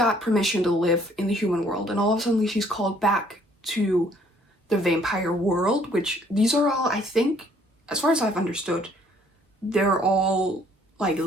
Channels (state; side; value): normal; both; correlation 0.62